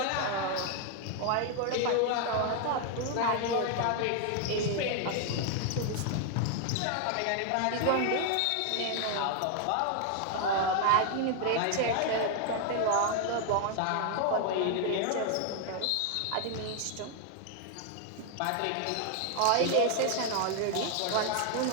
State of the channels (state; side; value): different; both; correlation 0.00